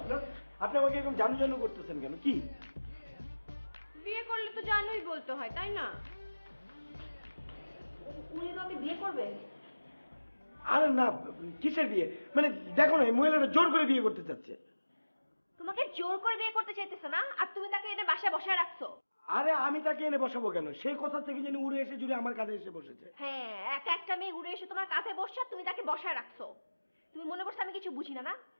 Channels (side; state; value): both; inverted; correlation -1.00